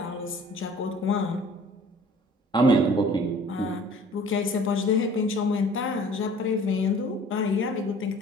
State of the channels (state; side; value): normal; both; correlation 0.50